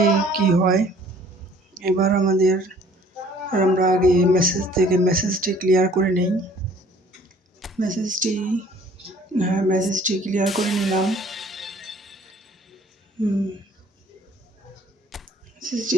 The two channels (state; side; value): normal; both; correlation 0.55